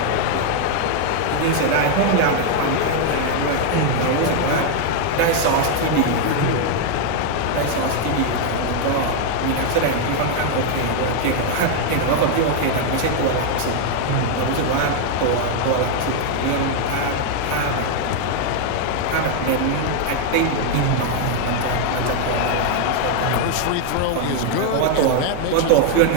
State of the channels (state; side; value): different; both; correlation 0.00